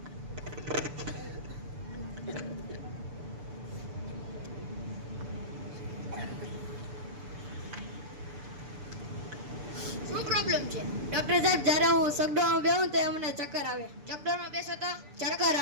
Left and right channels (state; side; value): late; left; 6.9 ms